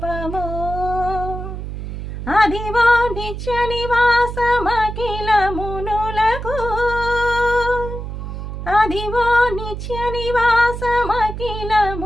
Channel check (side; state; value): right; noise; hum, 7 dB below the sound